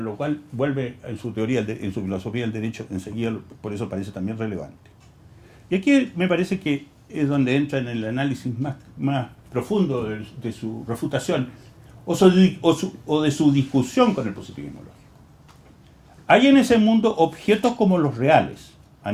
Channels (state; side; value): identical; both; correlation 1.00